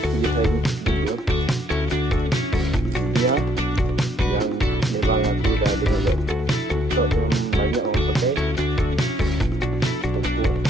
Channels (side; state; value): both; normal; correlation 0.70